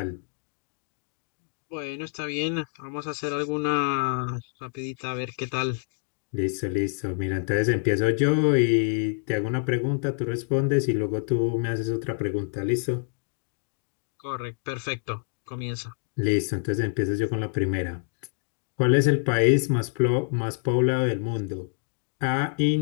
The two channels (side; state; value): right; silent; 57 dB below the other